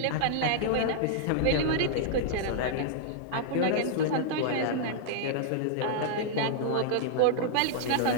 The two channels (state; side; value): different; both; correlation -0.01